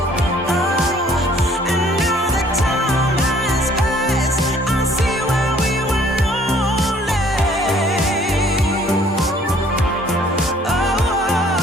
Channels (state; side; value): normal; both; correlation 0.59